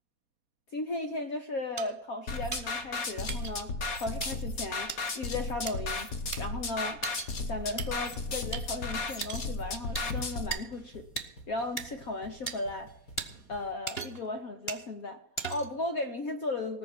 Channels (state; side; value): late; right; 4.2 ms